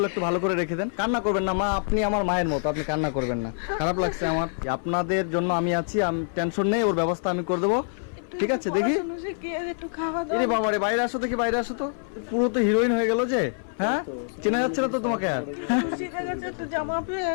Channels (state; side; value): silent; right; 60 dB below the other